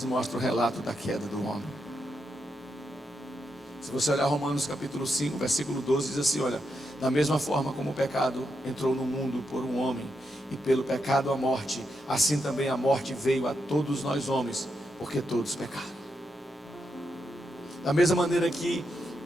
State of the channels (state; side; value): normal; both; correlation 0.84